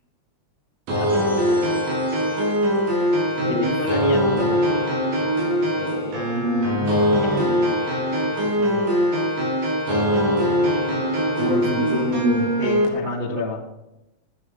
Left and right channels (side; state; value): left; late; 20 ms